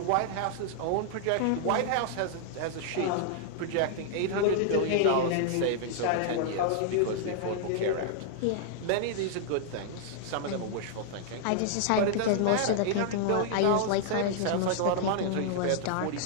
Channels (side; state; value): both; different; correlation -0.01